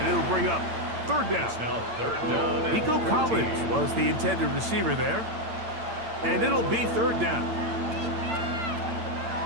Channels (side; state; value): left; late; 8.8 ms